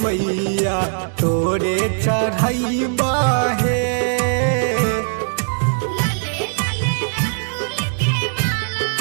मैया तोरे चढ़ैबा है।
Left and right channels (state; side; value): silent; left; 66 dB below the other